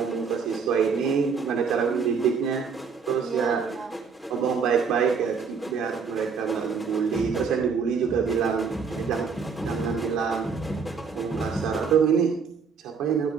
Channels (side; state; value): left; quieter; 5.7 dB